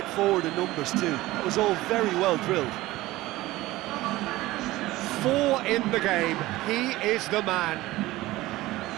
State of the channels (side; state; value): left; quieter; 17.9 dB